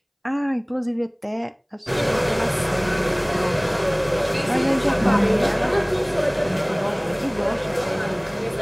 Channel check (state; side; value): identical; both; correlation 1.00